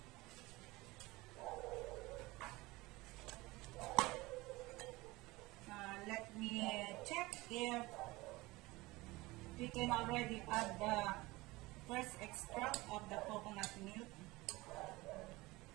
Let me check if we can already add the first extract of the coconut milk.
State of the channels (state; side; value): quieter; left; 21.2 dB